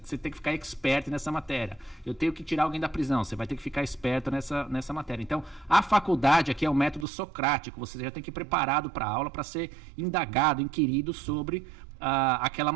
você tem que ficar expert nessa matéria. Eu tenho que tirar alguém da prisão, você vai ter que ficar esperto nessa matéria. Então, a faculdade aqui é um método socrático. Você já tem que ir preparado para a aula, para ser indagado, inquirido sobre aquela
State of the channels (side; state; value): left; drops out; at 7.1 s